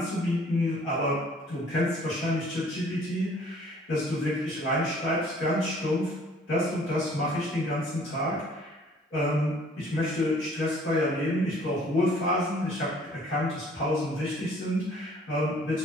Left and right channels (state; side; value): normal; both; correlation 0.56